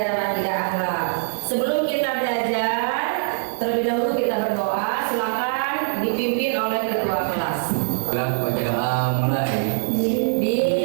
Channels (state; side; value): silent; left; digital silence